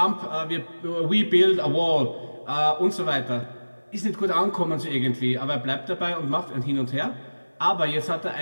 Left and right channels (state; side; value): inverted; both; correlation -1.00